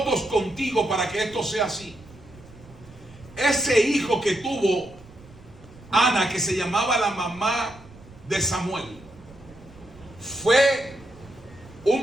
contigo para que esto sea así. Ese hijo que tuvo Ana, que se llamaba la mamá de Samuel, fue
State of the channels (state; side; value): noise; right; rumble, 22 dB below the sound